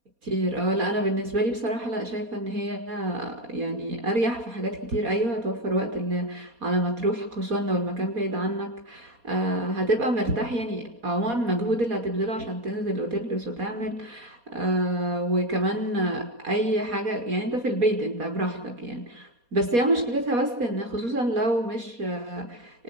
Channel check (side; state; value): left; late; 4.2 ms